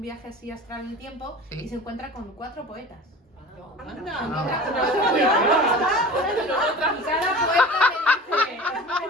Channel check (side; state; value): both; normal; correlation 0.38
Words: viaje así astral en el tiempo Sí. y se encuentra con 4 poetas. Anda. Y cada poeta le dice, es muy